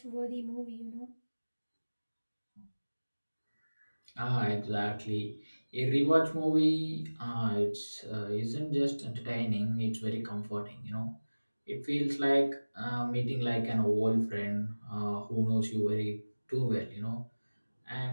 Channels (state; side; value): inverted; both; correlation -1.00